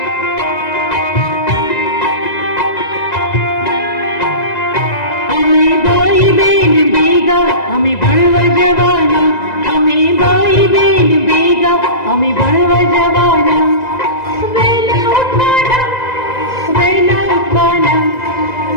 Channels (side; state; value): right; late; 2.0 ms